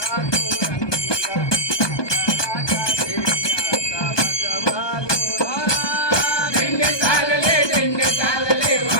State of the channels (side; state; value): right; late; 1.2 ms